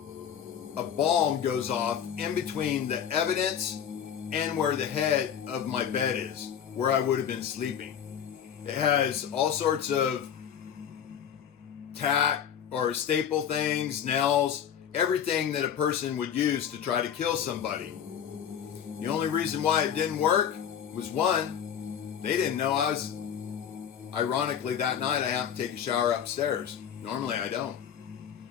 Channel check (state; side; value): quieter; right; 8.7 dB